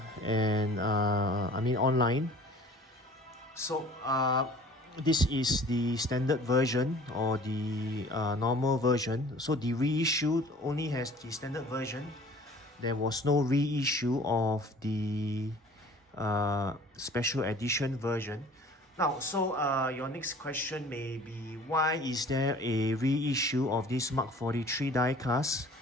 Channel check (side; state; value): both; normal; correlation 0.49